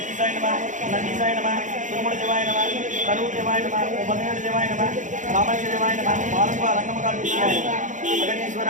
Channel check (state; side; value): late; left; 0.36 ms